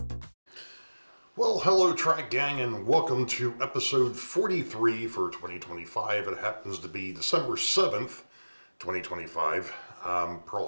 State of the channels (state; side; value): inverted; both; correlation -1.00